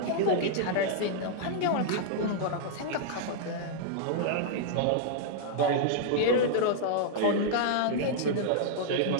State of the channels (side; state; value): both; different; correlation -0.01